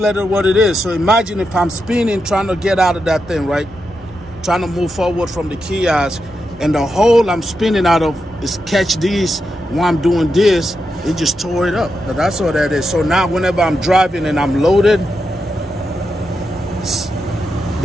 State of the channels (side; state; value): both; normal; correlation 0.86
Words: what it is. So imagine if I'm spinning, trying to get out of that thing, right? Trying to move forward from the kiosk, and the hole I'm spinning out of is catch these while I'm doing this. It just tore it up. But that's all that is. So now whenever I'm driving and I'm loaded,